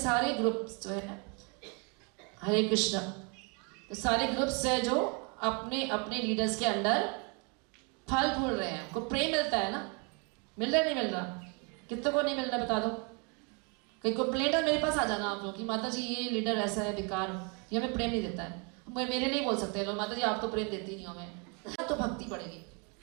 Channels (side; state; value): left; quieter; 34.1 dB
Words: ग्रुप्स जो है, हरे कृष्णा, तो सारे ग्रुप्स है जो अपने अपने लीडर्स के अंडर फल फूल रहे हैं। उनको प्रेम मिलता है ना, मिल रहा नहीं मिल रहा? कितने को नहीं मिल रहा बता दो। कहीं कंप्लेंट है मेरे पास आ जाना आप लोग कि माता जी ये लीडर ऐसा है बेकार, ये हमें प्रेम नहीं देता है। मेरे नहीं बोल सकते लोग, माता जी आप तो प्रेम देती नहीं हो हमें। तो भक्ति बढ़ेगी।